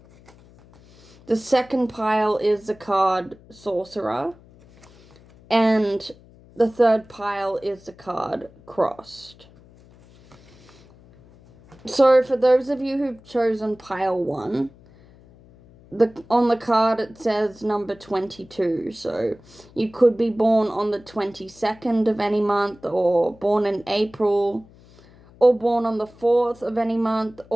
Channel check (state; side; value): noise; left; hum, 25 dB below the sound